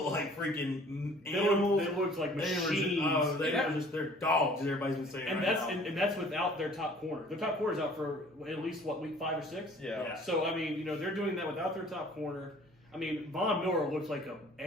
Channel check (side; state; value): both; normal; correlation 0.52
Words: like freaking animals. They look like machines. They're dogs. Everybody's been saying. And that's without their top corner. Their top corner's out for at least week 5 or 6. Yeah. So I mean, they're doing that without their top corner. I mean, Von Miller looks like an